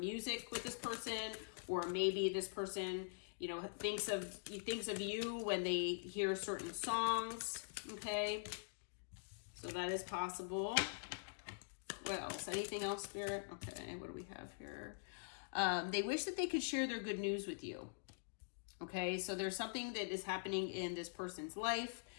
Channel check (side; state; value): right; silent; digital silence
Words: with this person, or maybe this person, thinks of you when they hear certain songs. Okay. So that is possible. What else? Anything else, Spirit? Okay, what do we have here? They wish that they could share their good news with you. Okay, so there's something that is happening in this person's life